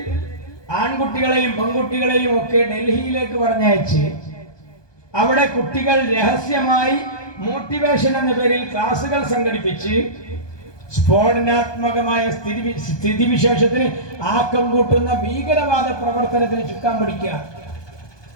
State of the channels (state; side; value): late; right; 1.2 ms